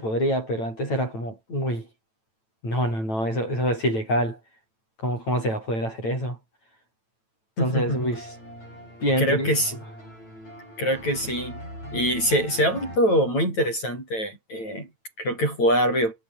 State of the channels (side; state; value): right; late; 9.0 ms